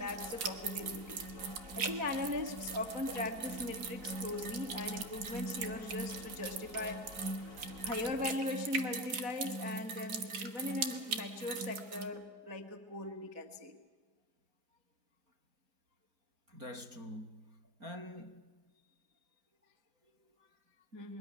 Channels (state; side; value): late; left; 4.7 ms